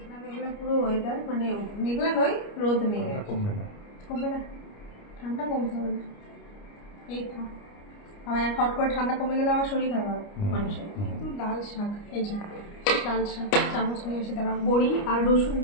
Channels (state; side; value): late; right; 29 ms